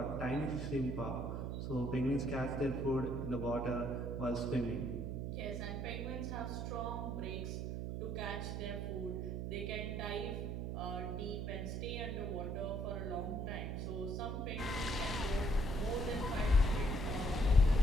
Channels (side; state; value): right; noise; hum, 3 dB below the sound